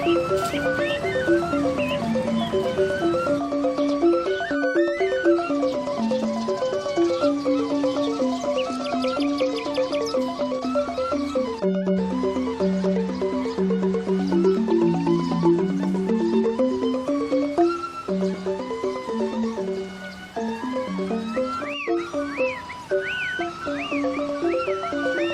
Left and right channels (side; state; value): both; identical; correlation 1.00